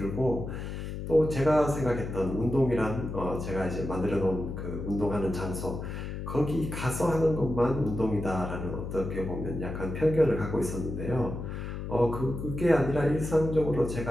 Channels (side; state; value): left; noise; hum, 6 dB below the sound